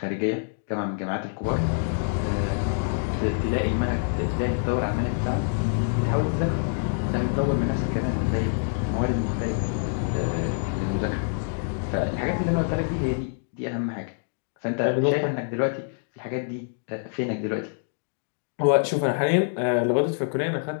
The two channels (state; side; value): silent; right; digital silence